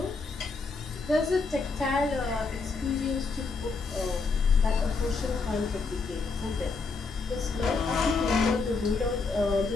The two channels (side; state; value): right; quieter; 4.3 dB